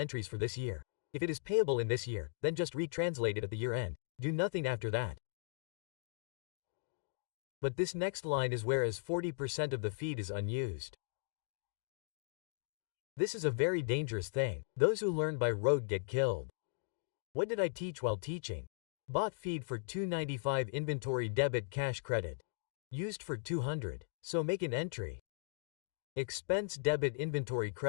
for this year. If it is payable in this year, then just retranslate it at the year-end. Do nothing after that. But this next line is whereas 40% of the feed is unused. This is a very dangerous thing. Those who learn by rote get killed. What did I teach while teaching? Bought feed for 295, inventory debit, cash credit. Used for 200. So make an entry. Expense debit, inventory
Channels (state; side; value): silent; right; digital silence